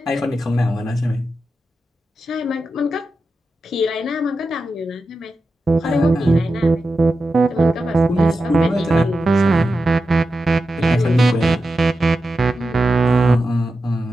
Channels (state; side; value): normal; both; correlation 0.90